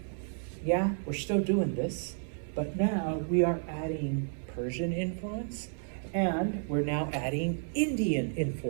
yeah, we're still doing this, but now we are adding Persian influence, and we're now adding Indian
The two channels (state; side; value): silent; left; 57 dB below the other